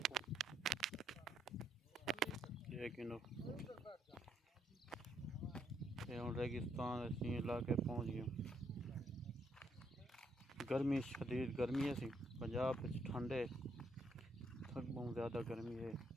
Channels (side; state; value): both; normal; correlation 0.74